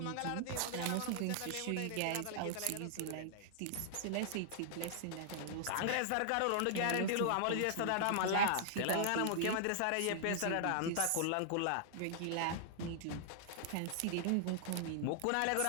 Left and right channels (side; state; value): both; different; correlation -0.01